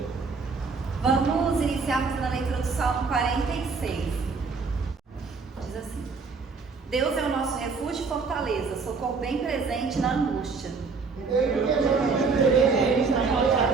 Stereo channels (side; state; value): left; quieter; 4.7 dB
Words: Vamos iniciar fazendo a leitura do Salmo 46. Diz assim: Deus é o nosso refúgio e fortaleza, socorro bem presente na angústia.